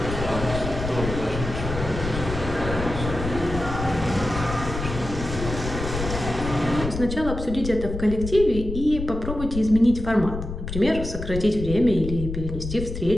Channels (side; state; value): left; noise; rumble, 6 dB below the sound